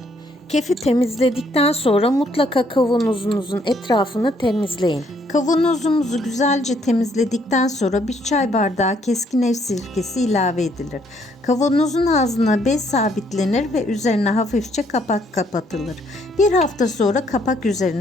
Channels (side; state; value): both; normal; correlation 0.68